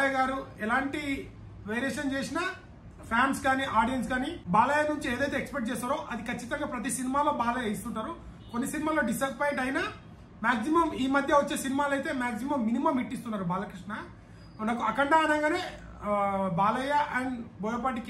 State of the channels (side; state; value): both; identical; correlation 1.00